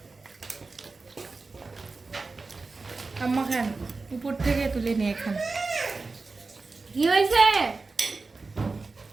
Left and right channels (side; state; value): left; quieter; 3.9 dB